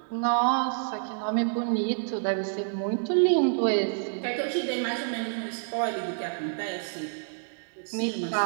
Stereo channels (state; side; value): silent; left; digital silence